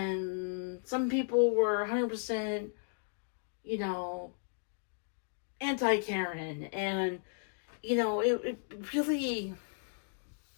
some people were 100%, you know, anti-Karen, and, you know, it really,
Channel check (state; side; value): silent; right; digital silence